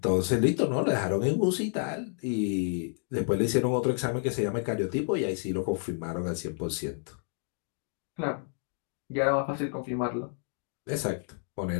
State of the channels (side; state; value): right; silent; 58 dB below the other